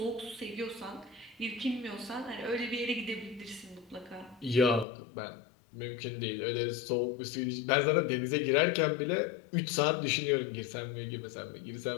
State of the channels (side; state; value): right; drops out; at 4.9 s